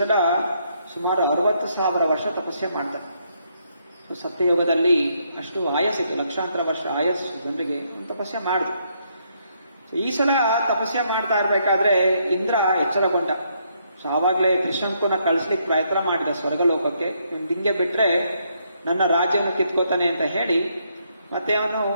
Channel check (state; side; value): inverted; both; correlation -0.74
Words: ಸುಮಾರು 60,000 ವರ್ಷ ತಪಸ್ಸೆ ಮಾಡ್ತಾನೆ. ಸತ್ಯಯುಗದಲ್ಲಿ ಅಷ್ಟು ಆಯಸ್ಸಿತ್ತು, ಲಕ್ಷಾಂತರ ವರ್ಷ ಆಯಸ್ಸು ಜನರಿಗೆ ತಪಸ್ಸೆ ಮಾಡಿದ್ರು. ಈ ಸಲ ತಪಸ್ಸೆ ಮಾಡ್ತಾ ಇರ್ಬೇಕಾದ್ರೆ ಇಂದ್ರ ಎಚ್ಚರಗೊಂಡ. ಸೊ ಆವಾಗಲೇ ತ್ರಿಶಂಕುನ ಕಳಿಸ್ಲಿಕ್ಕೆ ಪ್ರಯತ್ನ ಮಾಡಿದ ಸ್ವರ್ಗಲೋಕಕ್ಕೆ, ಹಿಂಗೆ ಬಿಟ್ರೆ ನನ್ನ ರಾಜ್ಯವನ್ನು ಕಿತ್ಕೋತಾನೆ ಅಂತ ಹೇಳಿ ಮತ್ತೆ ಅವನು